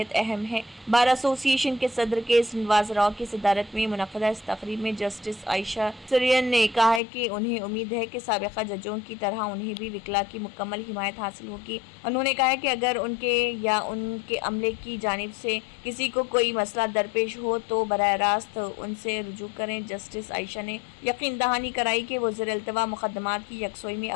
अहम है। बार एसोसिएशन के सदर के नवाज राव की सदारत में मुनक़दा इस तक़रीब में जस्टिस आयशा सरियन ने कहा है कि उन्हें उम्मीद है कि साबिक़ा जजों की तरह उन्हें भी विकला की मुकम्मल हिमायत हासिल होगी। उन्होंने कहा है कि अगर उनके या उनके अमले की जानिब से किसी को कोई मसला दरपेश हो तो बराह रास्त उनसे रुजू करें। जस्टिस आयशा ने यकीन दहानी कराई कि वो ज़ेर-इल्तिवा मुक़दमात की यकसोई में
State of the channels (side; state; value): right; drops out; at 7.0 s